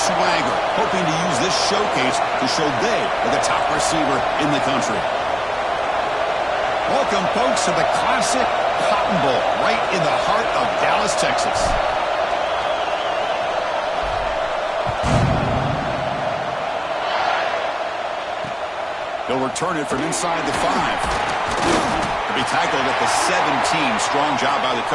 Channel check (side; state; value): both; identical; correlation 1.00